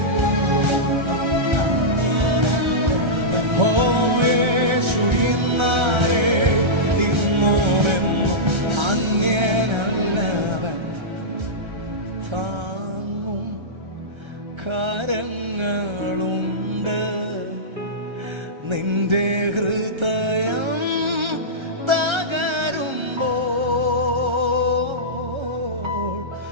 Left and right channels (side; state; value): left; late; 1.3 ms